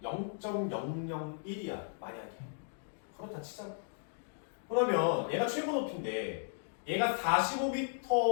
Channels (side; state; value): right; silent; digital silence